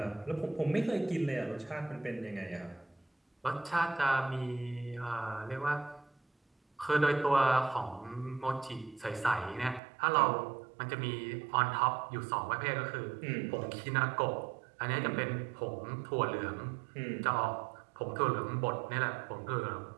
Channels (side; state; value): left; drops out; at 9.8 s